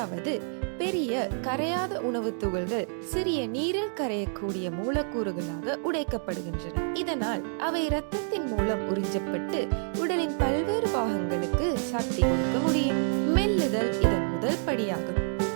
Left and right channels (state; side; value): silent; left; 59 dB below the other